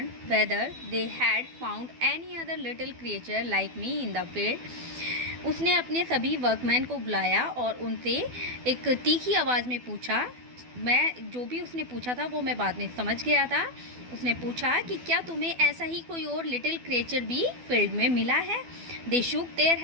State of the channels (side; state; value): left; late; 12 ms